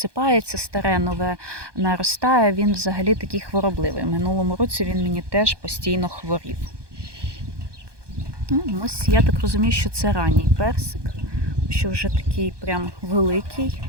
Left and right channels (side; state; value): left; late; 1.2 ms